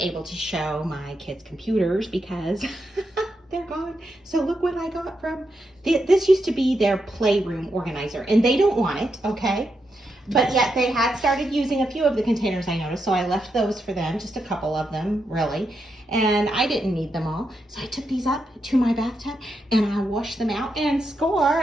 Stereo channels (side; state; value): both; normal; correlation 0.84